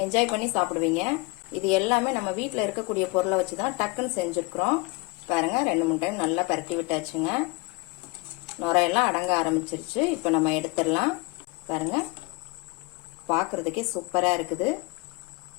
என்ஜாய் பண்ணி சாப்பிடுவீங்க. இது எல்லாமே நம்ம வீட்டில் இருக்கக்கூடிய பொருளை வச்சுதான் டக்குன்னு செஞ்சிருக்கிறோம். பாருங்க, 2-3 டைம் நல்லா பரட்டி விட்டாச்சுங்க. நுரையெல்லாம் அடங்க ஆரம்பிச்சிருச்சு. இப்ப நம்ம எடுத்துடலாம். பாருங்க, பாக்குறதுக்கே சூப்பரா இருக்குது.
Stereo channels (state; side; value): quieter; right; 26.3 dB